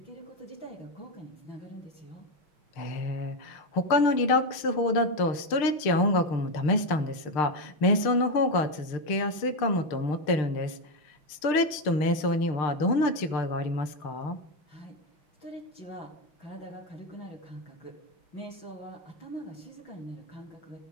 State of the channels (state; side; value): late; right; 6.6 ms